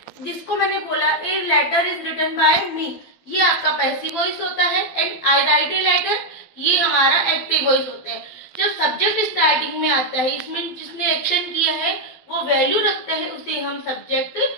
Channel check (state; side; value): late; right; 12 ms